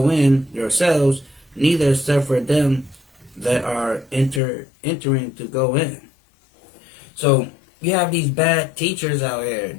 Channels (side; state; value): right; drops out; at 4.4 s